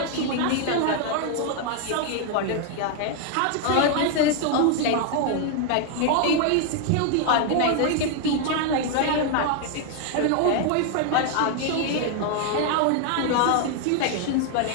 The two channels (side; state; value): both; different; correlation 0.00